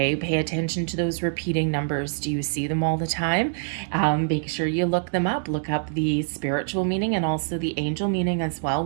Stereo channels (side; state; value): left; silent; digital silence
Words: pay attention to those repeating numbers. Do you see them all the time? Make sure you look them up. Look up the spiritual meaning and also the angel meaning as well